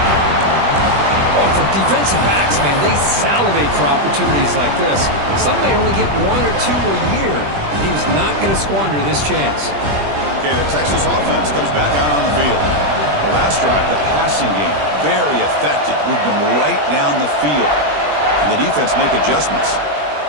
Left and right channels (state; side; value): late; left; 20 ms